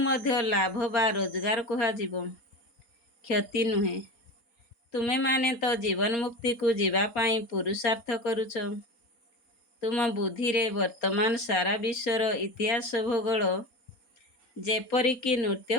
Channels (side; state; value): right; late; 4.3 ms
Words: लाभ बा रोजगार कुहा जीवो, क्षति नुहे। तुमे माने तो जीवन मुक्ति को जीवा पाई पुरुषार्थ करुछ। तुम बुद्धि रे वर्तमान सारा विश्वर इतिहास भूगोल जेपरिकी